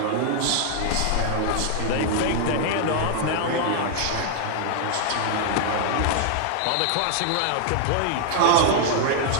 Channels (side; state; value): both; different; correlation 0.00